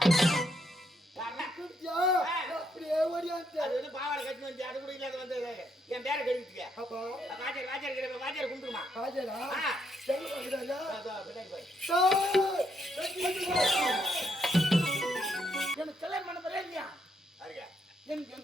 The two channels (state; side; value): normal; both; correlation 0.75